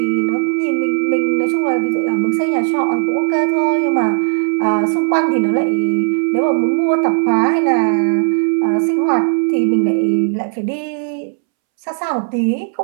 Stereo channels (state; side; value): silent; left; 68 dB below the other